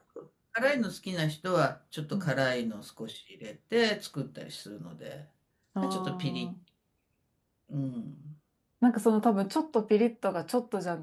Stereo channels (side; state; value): both; identical; correlation 1.00